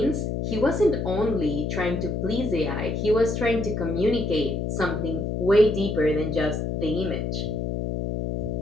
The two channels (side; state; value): left; noise; hum, 2 dB below the sound